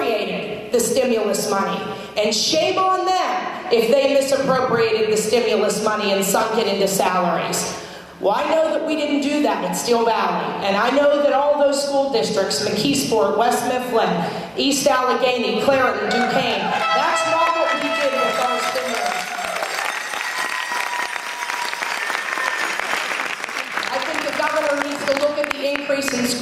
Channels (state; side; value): identical; both; correlation 1.00